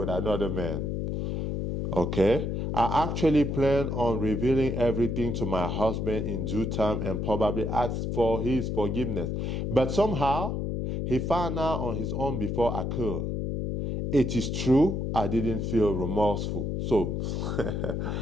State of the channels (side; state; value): left; noise; hum, 1 dB below the sound